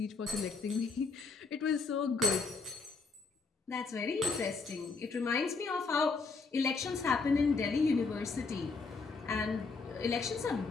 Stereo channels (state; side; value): quieter; right; 4.4 dB